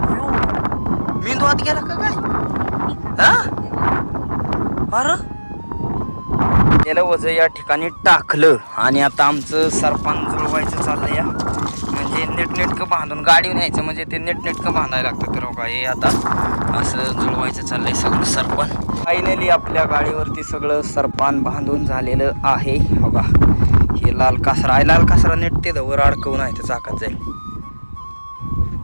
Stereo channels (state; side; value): inverted; both; correlation -1.00